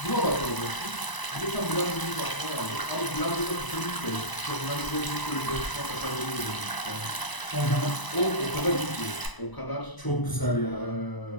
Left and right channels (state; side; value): late; right; 1.0 ms